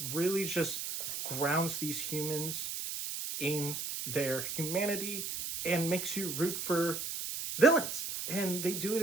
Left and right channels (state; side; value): noise; right; hiss, 4 dB below the sound